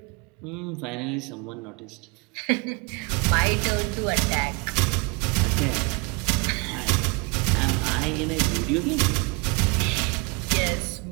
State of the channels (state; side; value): quieter; left; 29.6 dB